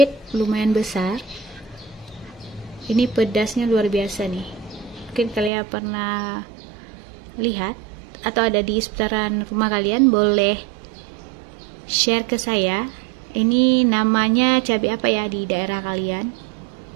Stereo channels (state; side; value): drops out; left; at 5.5 s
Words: lumayan besar. Ini pedasnya luar biasa nih. Mungkin kalian pernah lihat atau ada di seputaran rumah kalian, boleh share ke saya. Ini namanya cabai apa ya di daerah kalian?